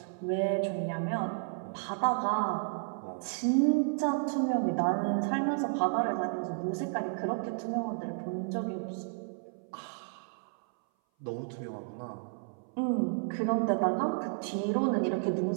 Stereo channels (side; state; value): left; silent; 56 dB below the other